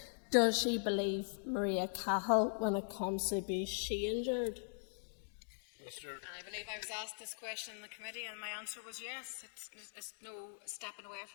Does she believe Maria Cahill when it comes to abuse she endured? I believe I was asked this question in the committee and my answer was yes. It's no stepping away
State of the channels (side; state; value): right; silent; digital silence